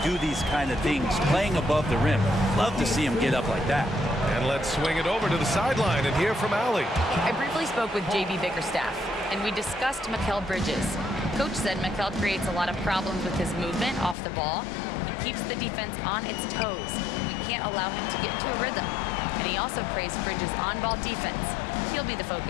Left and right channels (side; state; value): right; drops out; at 14.2 s